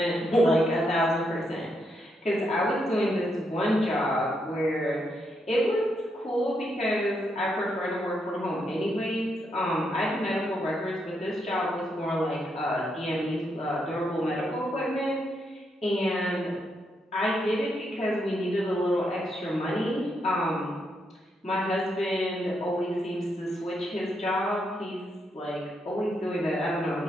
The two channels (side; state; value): both; normal; correlation 0.79